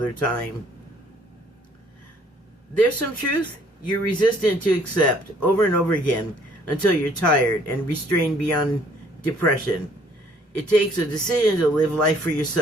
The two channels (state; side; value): normal; both; correlation 0.60